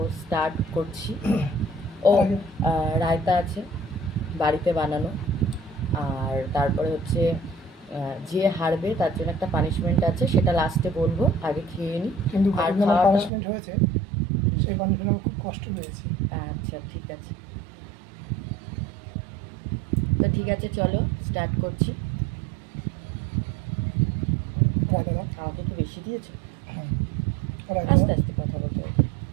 স্টার্ট করছি। ও রায়তা আছে বাড়িতে বানানো। আর তারপরে হচ্ছে যে হারবে তার জন্য একটা পানিশমেন্ট আছে, সেটা লাস্টে বলবো, আগে খেয়ে নিই। কিন্তু আর আমার খাওয়াটা পানিশমেন্ট হয়েছে, সেই পানিশমেন্ট আমার খুব কষ্ট পেয়েছি। আচ্ছা ঠিক আছে, তো ঠিক আছে চলো স্টার্ট করছি। রায়তা দাও। আমাকে একটু বেশি দিয়েছো, হ্যাঁ, রায়তা আস্তে দাও আস্তে কথা বলতে হবে।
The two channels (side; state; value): left; drops out; at 13.3 s